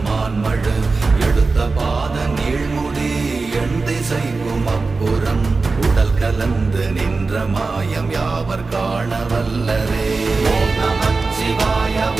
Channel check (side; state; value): left; quieter; 4.0 dB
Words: எடுத்த பாத நீழ்முடி எண் திசைக்கும் அப்புறம் உடல் கலந்து நின்ற மாயம் யாவர் காண வல்லரே. ஓம் நமச்சிவாய